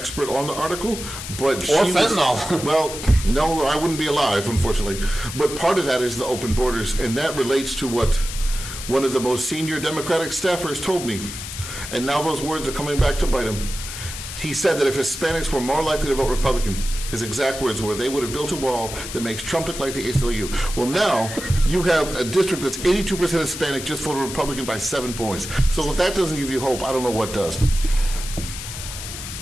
on the article, but Or fentanyl. Well, no, I wouldn't be alive, unfortunately. But part of that is the open borders, and that relates to what one of the most senior Democratic staffers told me. And now those words are coming back to bite him. He said that if Hispanics were more likely to vote Republican, his exact words were, they would have built a wall that makes Trump look like the ACLU. Well, now you have a district that's 82% Hispanic just voted Republican by 7 points. So if that doesn't give you hope, I don't know what does.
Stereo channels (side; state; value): left; noise; hiss, 9 dB below the sound